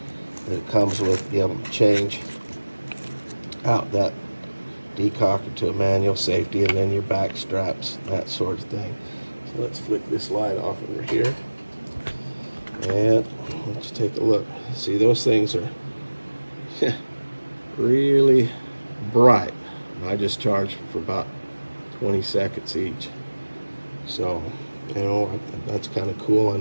that it comes with. Be able to change out that decocker to a manual safety, and then your back straps, that sort of thing. So let's flick this light off over here, and let's take a look. See, those things are really bright. I just charged for about 20 seconds each. So, you know, that's kind of cool. I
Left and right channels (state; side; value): inverted; both; correlation -1.00